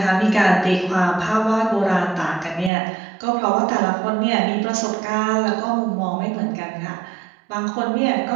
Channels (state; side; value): drops out; left; at 2.7 s